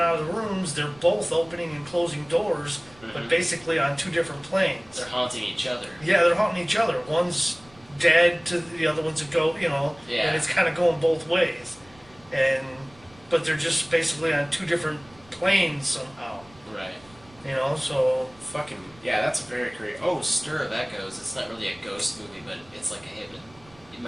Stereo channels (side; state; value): right; noise; rumble, 26 dB below the sound